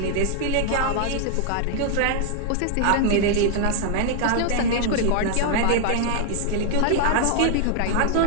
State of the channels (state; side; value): different; both; correlation 0.00